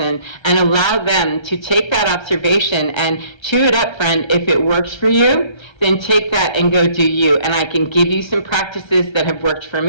and allow them to take that observation and chew it up, friend. If it works for you, then take that and go do you. And I can give you some practices that have worked for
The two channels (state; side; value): late; right; 1.3 ms